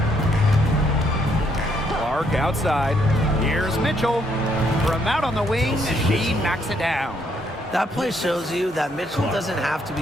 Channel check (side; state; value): both; normal; correlation 0.72